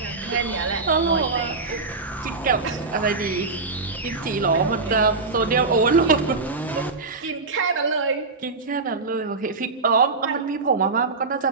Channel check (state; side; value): quieter; left; 4.0 dB